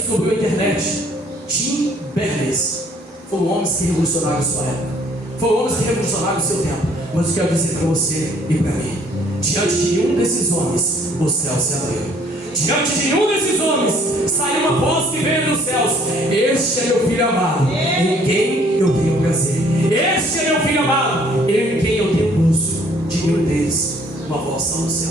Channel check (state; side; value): normal; both; correlation 0.61